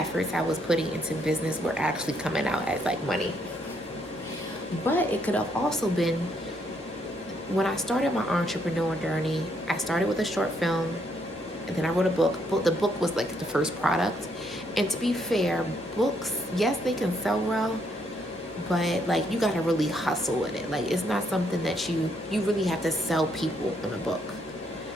I was putting into business were actually coming out as like money. But it could have also been when I started my entrepreneur journey. I started with a short film, and then I wrote a book. The book was like the first product. And to be fair, books, yes, they can sell well, but like you gotta really hustle with it. Like it's not something that you really have to sell people in a book.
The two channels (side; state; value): both; normal; correlation 0.72